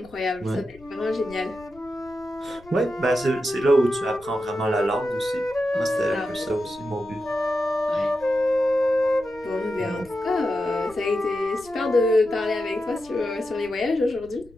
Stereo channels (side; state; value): left; noise; rumble, 25 dB below the sound